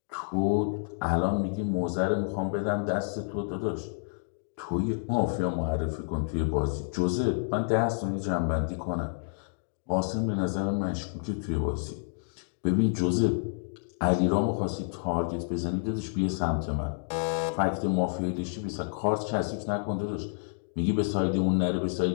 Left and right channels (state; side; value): silent; right; digital silence